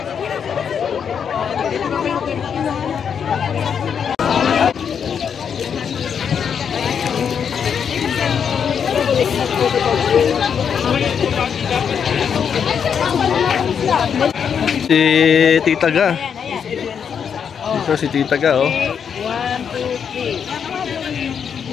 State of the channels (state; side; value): quieter; right; 7.3 dB